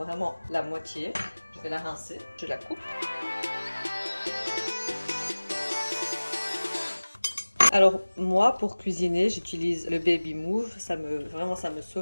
la moitié, je vais la rincer, je la coupe. Alors moi pour cuisiner j'utilise le baby move, vraiment ça me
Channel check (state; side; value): inverted; both; correlation -1.00